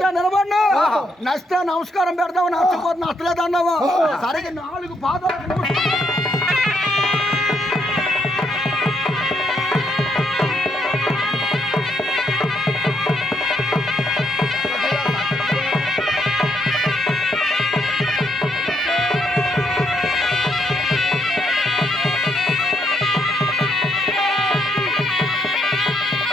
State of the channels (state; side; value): normal; both; correlation 0.75